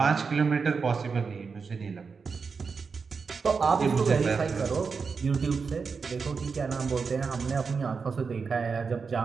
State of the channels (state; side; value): quieter; left; 5.2 dB